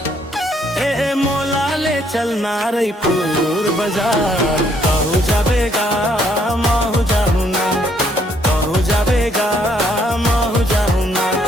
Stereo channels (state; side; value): normal; both; correlation 0.68